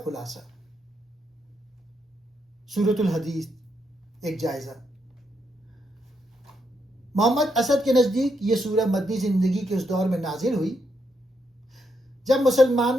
خلاصہ۔ سورۃ الحدید ایک جائزہ۔ محمد اسد کے نزدیک یہ سورہ مدنی زندگی کے اس دور میں نازل ہوئی جب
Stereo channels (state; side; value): normal; both; correlation 0.79